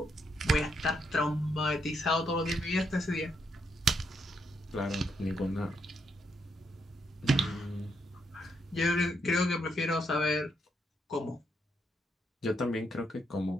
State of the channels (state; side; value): normal; both; correlation 0.78